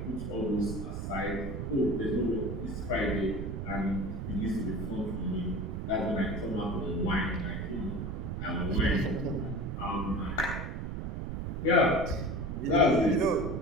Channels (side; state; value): right; noise; rumble, 4 dB below the sound